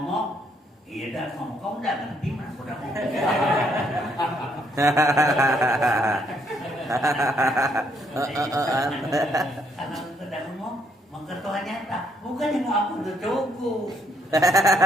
iya udah ngomong, kau udah ngerti mana aku udah ngomong. Karena udah ngomong, maka Tuhan nyata. Bukan yang aku udah cukup.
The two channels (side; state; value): both; normal; correlation 0.71